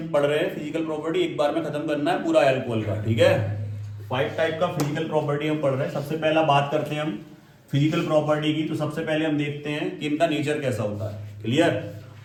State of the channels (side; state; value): both; identical; correlation 1.00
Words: पढ़ रहे हैं। फिजिकल प्रॉपर्टी एक बार में खत्म करना है पूरा एल्कोहल का, ठीक है। 5 टाइप का फिजिकल प्रॉपर्टी हम पढ़ रहे हैं। सबसे पहला बात करते हैं हम फिजिकल प्रॉपर्टी की। तो सबसे पहले हम देखते हैं कि इनका नेचर कैसा होता है। क्लियर।